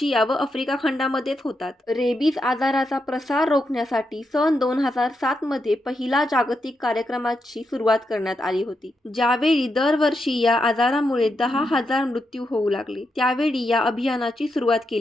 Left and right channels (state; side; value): normal; both; correlation 0.84